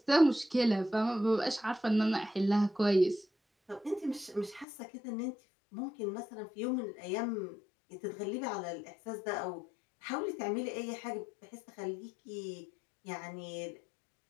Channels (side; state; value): right; drops out; at 4.7 s